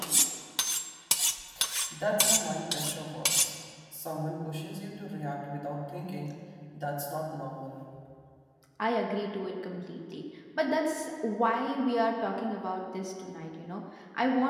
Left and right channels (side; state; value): both; identical; correlation 1.00